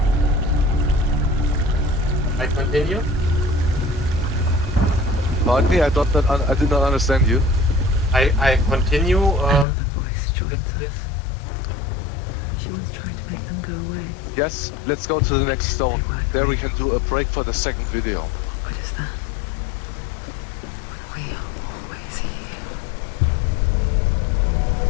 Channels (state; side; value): drops out; right; at 9.7 s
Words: I continue. Pardon me, I did not understand you. I continue. Another voice joins us. She once tried to make them go away. Yes, let's go to the next stone. They weren't There we real. can do a break for the second video. But what good is that? When we are always here.